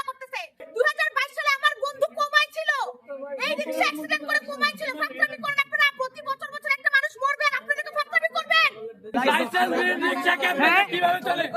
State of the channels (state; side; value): identical; both; correlation 1.00